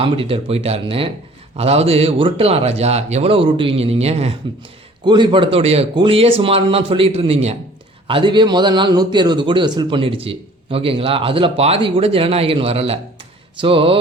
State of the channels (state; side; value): normal; both; correlation 0.52